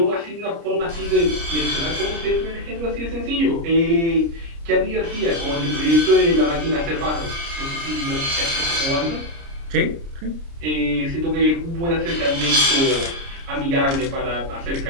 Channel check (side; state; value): left; late; 29 ms